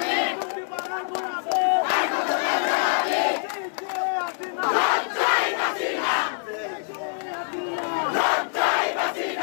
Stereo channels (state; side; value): silent; right; digital silence